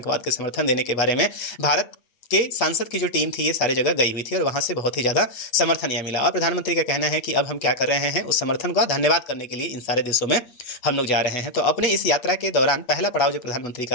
के समर्थन देने के बारे में भारत के सांसद की जो टीम थी ये सारे जगह गई हुई थी और वहाँ से बहुत ही ज़्यादा समर्थन यह मिला। और प्रधानमंत्री का कहना है कि अब हम क्या कर रहे हैं, उस समर्थन का धन्यवाद करने के लिए इन सारे देशों में हम लोग जा रहे हैं। तो अपने इस यात्रा के दौरान पहला पड़ाव जो प्रधानमंत्री का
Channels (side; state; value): right; late; 8.5 ms